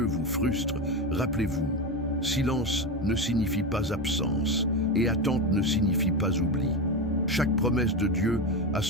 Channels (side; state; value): both; normal; correlation 0.17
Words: vous frustre, rappelez-vous, silence ne signifie pas absence, et attente ne signifie pas oubli. Chaque promesse de Dieu a